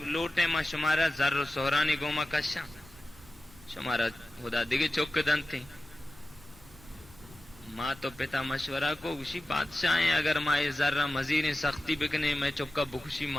لوٹے ماں شمارا ذر و سہرانی گوما کشاں شمارا خدا دیگے چوک دن تھی ماں تو پتا مشورہ کو اسی بادشاہ ہیں اگر ماں ذرہ مزید سختی بکنے میں چکا بخشی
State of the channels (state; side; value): noise; left; rumble, 24 dB below the sound